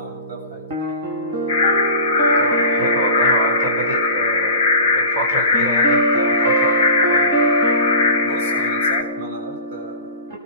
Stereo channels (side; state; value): both; inverted; correlation -0.36